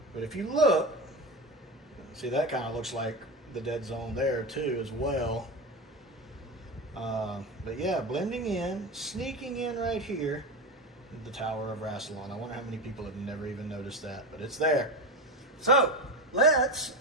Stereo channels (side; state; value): both; normal; correlation 0.20